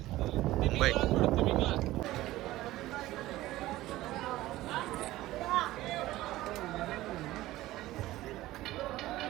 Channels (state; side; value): quieter; left; 16.6 dB